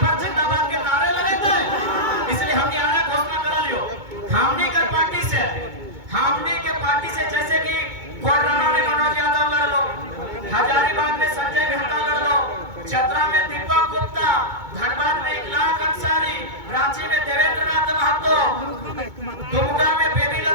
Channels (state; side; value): late; left; 2.2 ms